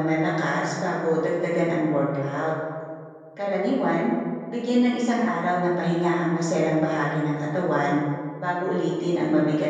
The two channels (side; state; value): both; identical; correlation 1.00